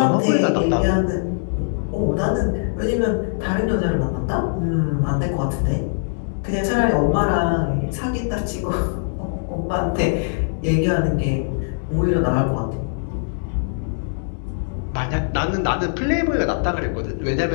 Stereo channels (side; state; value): right; silent; digital silence